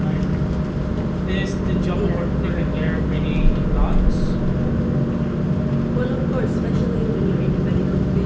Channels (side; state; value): both; identical; correlation 1.00